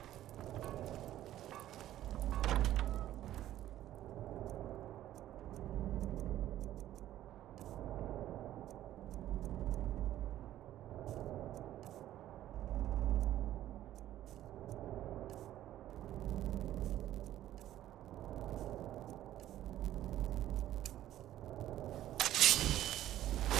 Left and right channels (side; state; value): left; quieter; 13.1 dB